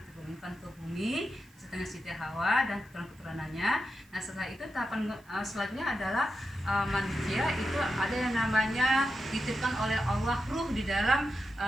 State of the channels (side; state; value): right; noise; hiss, 29 dB below the sound